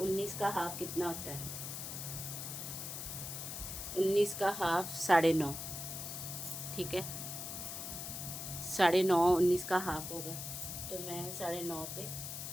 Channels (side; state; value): left; noise; hiss, 6 dB below the sound